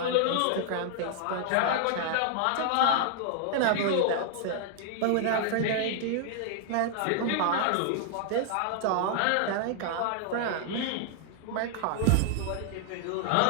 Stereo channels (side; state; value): both; different; correlation -0.01